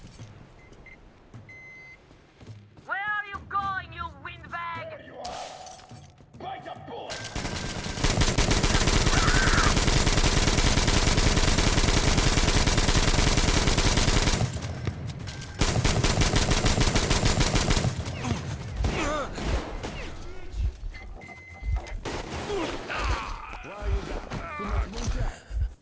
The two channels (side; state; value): both; identical; correlation 1.00